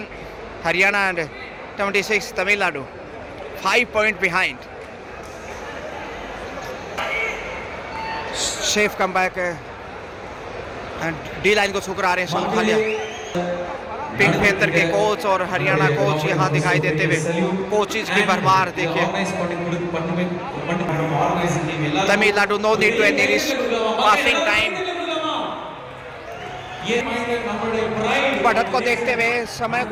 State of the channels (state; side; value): identical; both; correlation 1.00